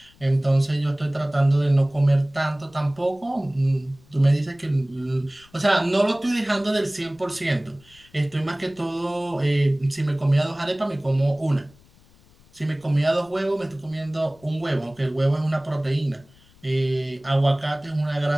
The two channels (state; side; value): noise; left; rumble, 28 dB below the sound